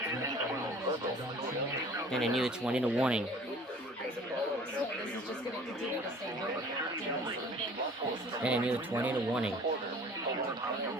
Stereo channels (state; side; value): normal; both; correlation 0.48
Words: And I knew it's one in the warning. And I knew it's one in the warning.